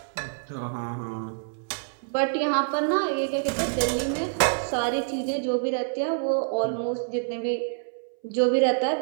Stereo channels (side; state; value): left; silent; 60 dB below the other